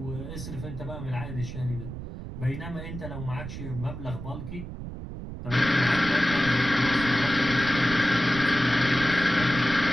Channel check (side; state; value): right; noise; rumble, 9 dB below the sound